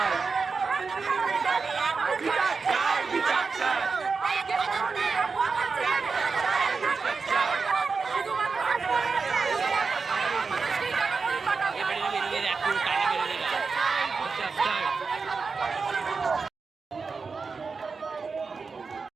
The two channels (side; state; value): left; quieter; 4.8 dB